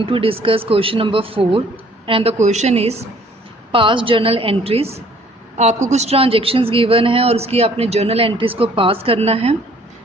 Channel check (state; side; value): normal; both; correlation 0.58